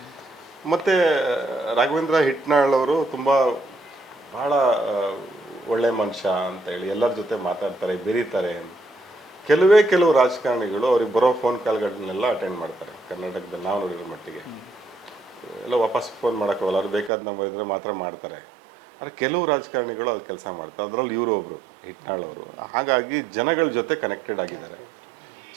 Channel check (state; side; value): drops out; left; at 17.1 s